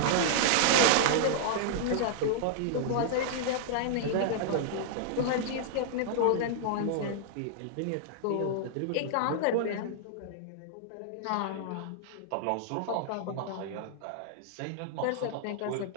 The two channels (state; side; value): different; both; correlation -0.01